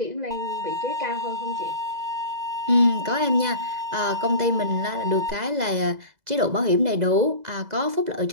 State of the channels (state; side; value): late; left; 2.0 ms